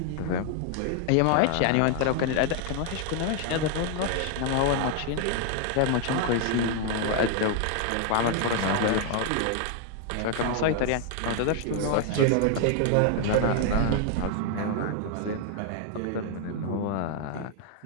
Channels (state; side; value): different; both; correlation 0.00